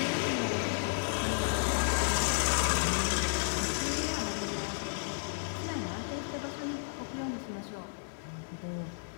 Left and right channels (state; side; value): silent; right; digital silence